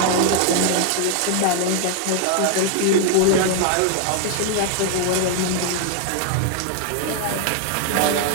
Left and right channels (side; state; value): both; different; correlation 0.00